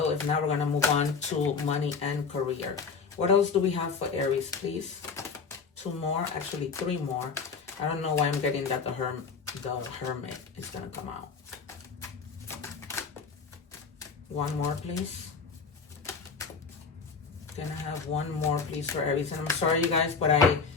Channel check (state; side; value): quieter; right; 5.3 dB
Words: If not, we're gonna move on to money and career. What else do we have for Aries, please? 2 more, actually 3 more. I don't know why I'm getting that the Hermit is gonna come out. 1 more, please. Can I have 1 more, please, for Aries? And I'm sorry, you guys, but